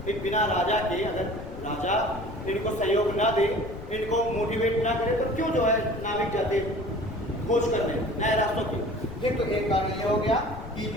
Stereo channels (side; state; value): left; noise; rumble, 13 dB below the sound